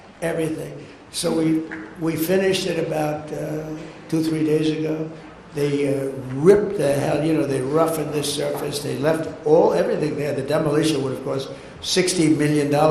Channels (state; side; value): identical; both; correlation 1.00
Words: everything. So we finished it about 2-3 days ago. They ripped the hell, you know, they roughened this surface. They left everything there. The demolition would have cost $60 million